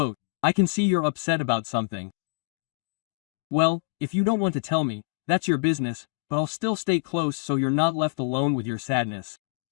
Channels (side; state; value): right; quieter; 34.3 dB